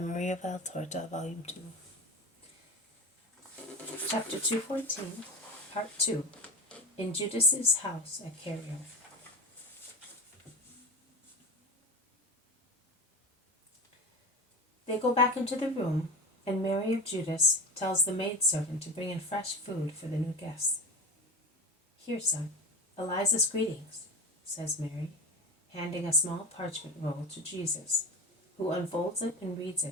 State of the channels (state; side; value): normal; both; correlation 0.27